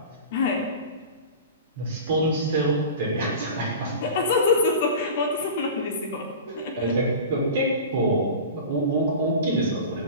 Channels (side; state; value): both; inverted; correlation -0.34